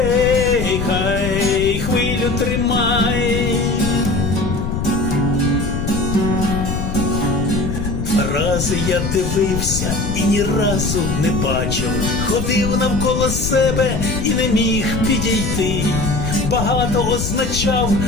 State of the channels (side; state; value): left; noise; rumble, 3 dB below the sound